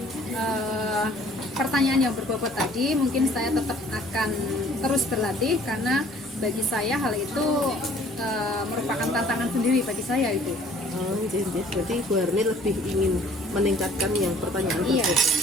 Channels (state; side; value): normal; both; correlation 0.55